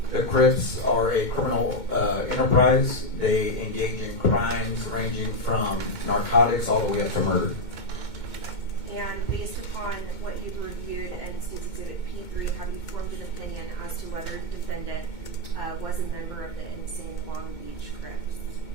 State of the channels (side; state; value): right; late; 2.2 ms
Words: The Crips are a criminal enterprise. They engage in crimes ranging from narcotics all the way up to murder. And based upon what you've reviewed and State's Exhibit P3, have you formed an opinion as to whether the defendant was a member of the Insane Long Beach Crips?